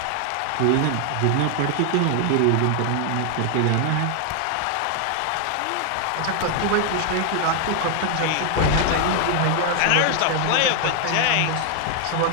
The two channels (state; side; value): different; both; correlation 0.00